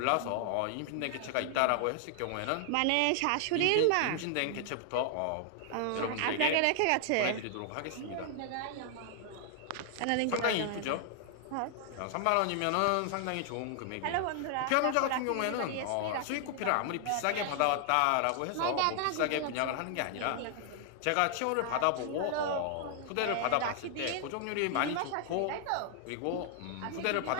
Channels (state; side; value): different; both; correlation 0.00